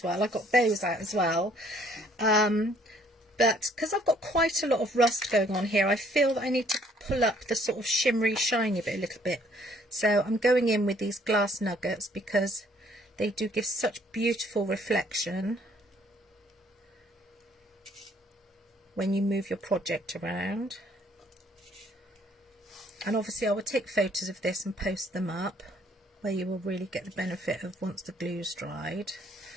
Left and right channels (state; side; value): normal; both; correlation 0.63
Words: well. I got those out as well, but because I've got quite a lot of rust going on here, I feel that I need to pull up the sort of shimmery shiny bit a little bit. So I'm going in with these glass nuggets because they do give such beautiful reflection when you move your project around. And obviously I will take photos of this and post them up, where you will really get the benefit of, once the glue's dried,